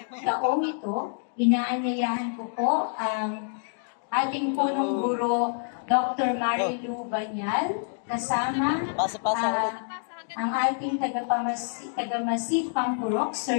taong ito, inaanyayahan ko po ang ating punong guro Dr. Marilu Banyal, kasama ang ating tagamasip Pampurok,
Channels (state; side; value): silent; right; digital silence